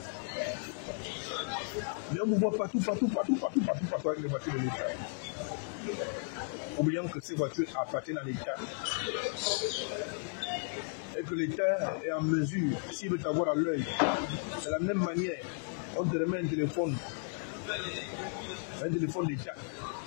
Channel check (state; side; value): silent; right; 55 dB below the other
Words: Mais on vous voit partout avec les voitures de l'État. Oubliant que ces voitures appartiennent à l'État. Et que l'État est en mesure, s'il veut t'avoir à l'œil, de la même manière, on te remet un téléphone d'État